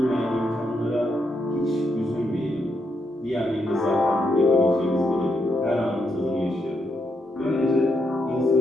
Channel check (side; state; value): both; normal; correlation 0.80